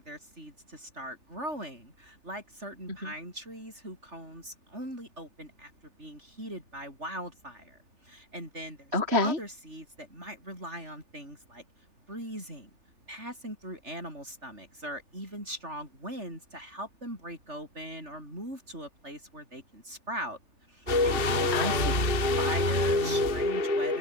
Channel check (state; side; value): late; left; 3.4 ms